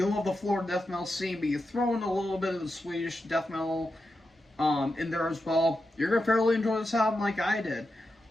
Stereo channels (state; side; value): normal; both; correlation 0.89